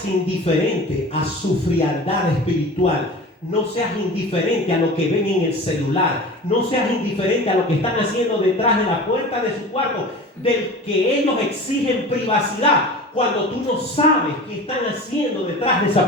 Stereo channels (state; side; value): normal; both; correlation 0.36